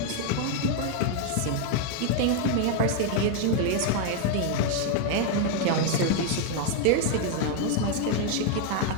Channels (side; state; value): both; different; correlation 0.00